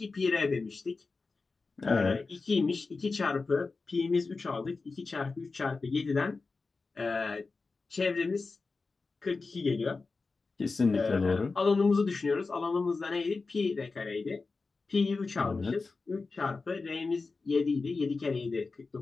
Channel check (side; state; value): right; quieter; 4.1 dB